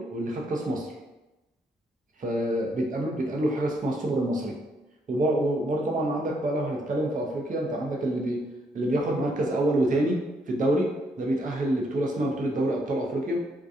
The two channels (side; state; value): both; normal; correlation 0.73